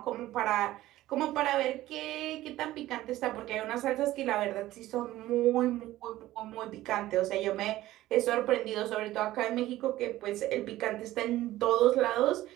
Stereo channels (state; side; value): quieter; left; 15.5 dB